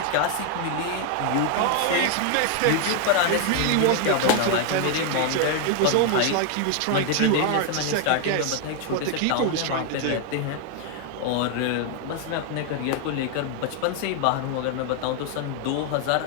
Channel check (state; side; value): different; both; correlation 0.01